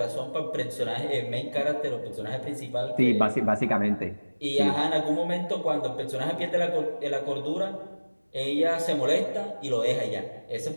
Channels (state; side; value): inverted; both; correlation -1.00